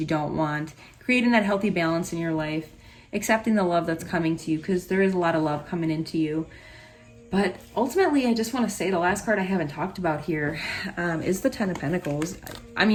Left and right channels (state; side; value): identical; both; correlation 1.00